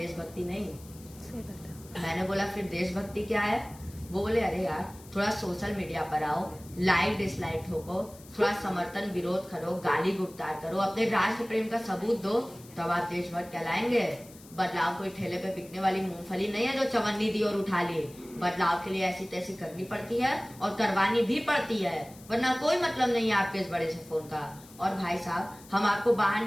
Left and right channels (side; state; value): left; noise; hiss, 22 dB below the sound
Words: नहीं। मैंने बोला, फिर देशभक्ति क्या है? वो बोले, अरे यार, थोड़ा सोशल मीडिया पर आओ, लाइक डिसलाइक ठोको, थोड़ा समर्थन विरोध करो, गाली गुप्तार करो, अपने राष्ट्र प्रेम का सबूत दो, तब आप देशभक्त कहलाएंगे। बदलाव कोई ठेले पे बिकने वाली मूंगफली नहीं है जो चवन्नी दी और उठा ली। बदलाव के लिए ऐसी तैसी करनी पड़ती है और करवानी भी पड़ती है, वरना कोई मतलब नहीं है आपके इस बड़े से फोन का। और भाई साहब, हम आपको बाहर